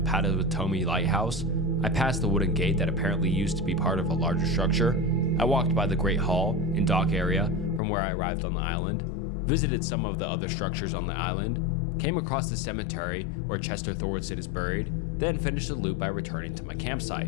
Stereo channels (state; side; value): drops out; right; at 7.8 s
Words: Lighthouse. I passed the wooden gate that apparently used to be part of a larger structure. I walked by the Great Hall and dock area from where I arrived on the island, visited some of the other structures on the island, came across the cemetery where Chester Thordson is buried, then finished the loop by returning to my